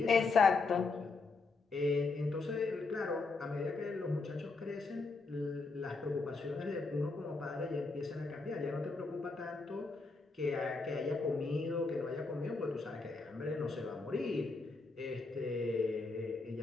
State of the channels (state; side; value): quieter; right; 3.9 dB